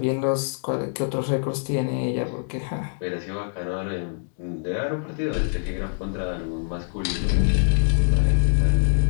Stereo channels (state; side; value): silent; right; digital silence